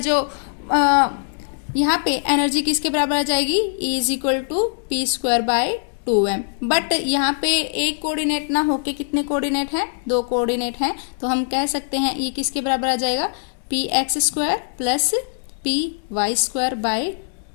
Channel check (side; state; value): right; silent; digital silence